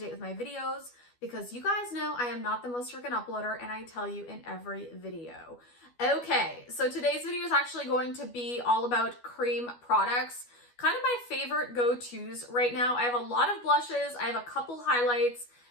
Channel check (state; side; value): late; right; 12 ms